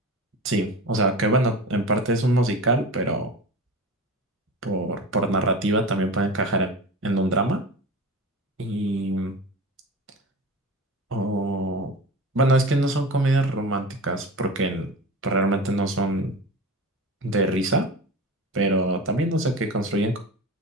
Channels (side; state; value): both; normal; correlation 0.31